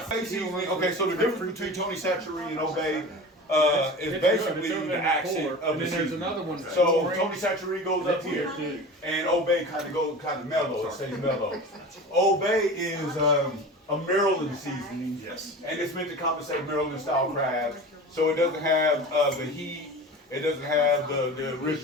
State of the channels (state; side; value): normal; both; correlation 0.34